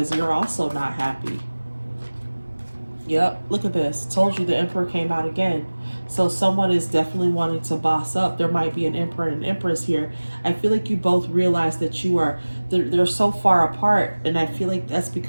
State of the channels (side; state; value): both; inverted; correlation -1.00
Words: you're also not happy. Yep, look at this. Told you the emperor came out again. So someone is definitely wanting to boss up. There might be an emperor and an empress here. I feel like you both realize that they're so far apart, and I feel like that's